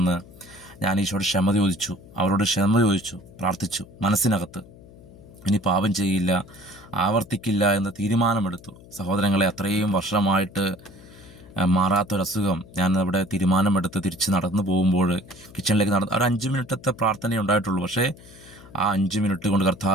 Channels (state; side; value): noise; left; hum, 21 dB below the sound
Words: ഞാൻ ഈശോയോട് ക്ഷമ ചോദിച്ചു, അവരോട് ക്ഷമ ചോദിച്ചു, പ്രാർത്ഥിച്ചു. മനസ്സിനകത്ത് ഇനി പാപം ചെയ്യില്ല, ആവർത്തിക്കില്ല എന്ന് തീരുമാനമെടുത്തു. സഹോദരങ്ങളെ, അത്രയും വർഷമായിട്ട് മാറാത്തൊരസുഖം, ഞാൻ അവിടെ തീരുമാനമെടുത്ത് തിരിച്ച് നടന്നു പോകുമ്പോൾ കിച്ചണിലേക്ക് ഒരു 5 മിനിറ്റത്തെ പ്രാർത്ഥനയേ ഉണ്ടായിട്ടുള്ളൂ. പക്ഷേ ആ 5 മിനിറ്റ് കൊണ്ട്